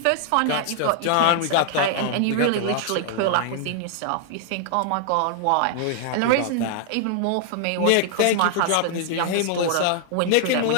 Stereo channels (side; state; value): both; different; correlation 0.00